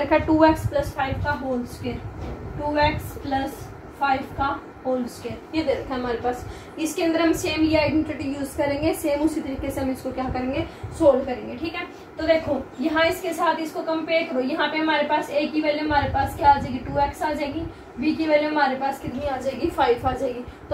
है, 2x + 5 का होल स्क्वायर, 2x + 5 का होल स्क्वायर ये दे रखा है हमारे पास। इसके अंदर हम सेम ये आइडेंटिटी यूज करेंगे, सेम उसी तरीके से हम इसको क्या करेंगे, सोल्व करेंगे। ठीक है, तो देखो यहाँ इसके साथ इसको कंपेयर करो, यहाँ पे हमारे पास a की वैल्यू हमारे पास क्या आ जाएगी, 2x आ जाएगी, b की वैल्यू हमारे पास कितनी आ जाएगी, 5 आ जाएगी,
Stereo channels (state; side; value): identical; both; correlation 1.00